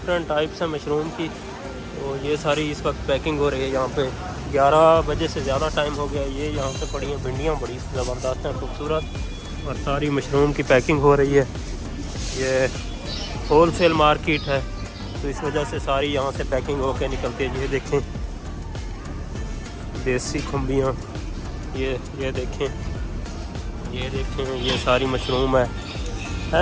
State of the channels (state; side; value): identical; both; correlation 1.00